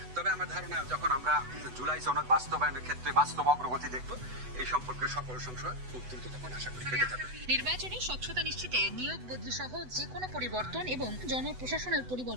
তবে আমার ধারণা যখন আমরা জুলাই সনদ বাস্তবায়নের ক্ষেত্রে বাস্তব অগ্রগতি দেখব, এই সম্পর্কে সকল সংশয় খুব দ্রুত তখন আশা করি কেটে যাবে। নির্বাচনে স্বচ্ছতা নিশ্চিতে নিয়োগ বদলি সহ যে কোনো পরিবর্তন এবং জনপ্রশাসনের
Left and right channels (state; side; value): late; left; 8.0 ms